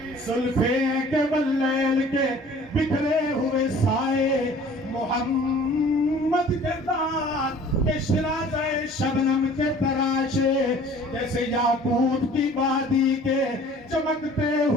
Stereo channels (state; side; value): normal; both; correlation 0.50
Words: زلفیں کے واللیل کے بکھرے ہوئے سائے، محمد کے دان کے شرازہ شبنم کے تراشے، جیسے یاقوت کی وادی کے چمکتے